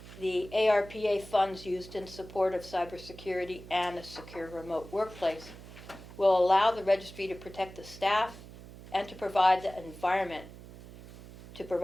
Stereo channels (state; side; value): noise; right; hum, 16 dB below the sound